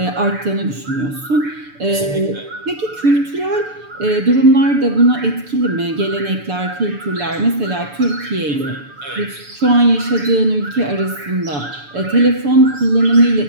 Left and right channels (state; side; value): late; left; 6.9 ms